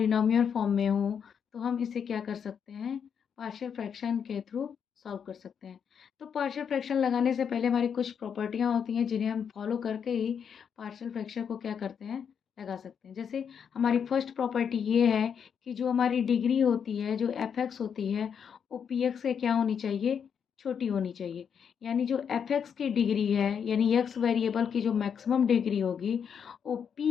form में हो तो हम इसे क्या कर सकते हैं, पार्शियल फ्रैक्शन के थ्रू सॉल्व कर सकते हैं। तो पार्शियल फ्रैक्शन लगाने से पहले हमारी कुछ प्रॉपर्टियां होती हैं जिन्हें हम फॉलो करके ही पार्शियल फ्रैक्शन को क्या करते हैं, लगा सकते हैं। जैसे हमारी फर्स्ट प्रॉपर्टी ये है कि जो हमारी डिग्री होती है, जो एफ एक्स होती है, वो पी एक्स से क्या होनी चाहिए, छोटी होनी चाहिए। यानी जो एफ एक्स की डिग्री है, यानी एक्स वेरिएबल की जो मैक्सिमम डिग्री होगी वो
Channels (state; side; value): quieter; right; 7.3 dB